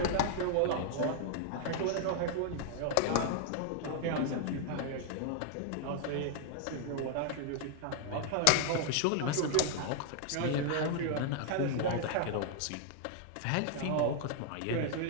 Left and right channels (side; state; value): both; different; correlation -0.01